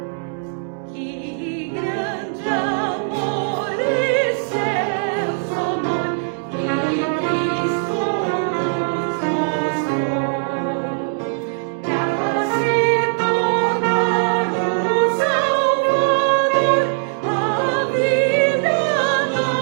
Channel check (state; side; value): silent; left; 63 dB below the other